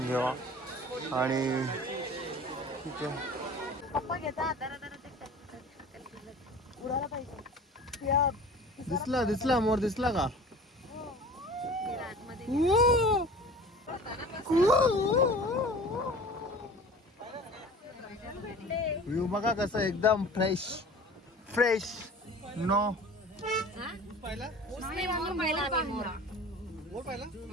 घ्यावा आणि ठीक आहे दिसला मोर दिसला का व्ह्यू बघा कसं एकदम फ्रेश नो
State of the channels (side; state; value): both; normal; correlation 0.41